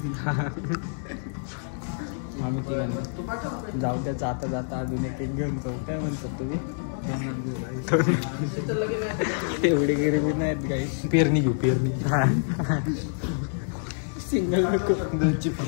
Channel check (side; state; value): right; silent; digital silence